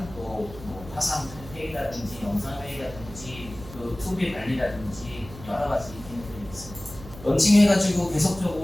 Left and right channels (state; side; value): noise; right; hum, 15 dB below the sound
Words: 화상 회의라든지 영상 회의라든지 투비 관리라든지 여러 가지 기능들이 있습니다. 런칭해가지고